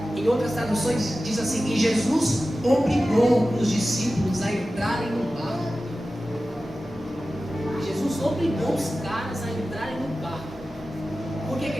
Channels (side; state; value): both; normal; correlation 0.95